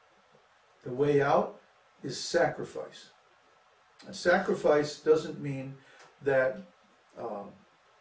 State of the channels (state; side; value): identical; both; correlation 1.00